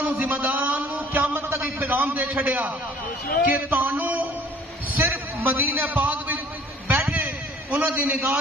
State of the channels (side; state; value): both; normal; correlation 0.54